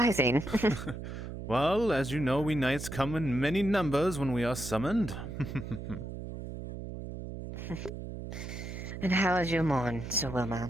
Well, as you know, we knights come in many numbers when we are summoned. And how is your morn, Sir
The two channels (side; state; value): right; noise; hum, 8 dB below the sound